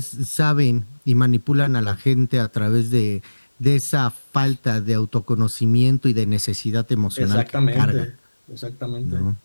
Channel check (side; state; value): both; inverted; correlation -1.00